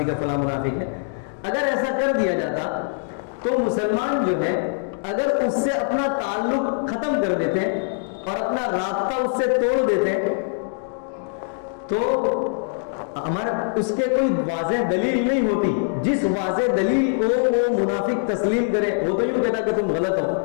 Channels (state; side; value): silent; right; digital silence